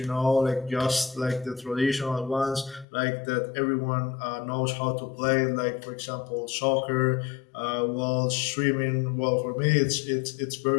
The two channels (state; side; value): drops out; right; at 2.9 s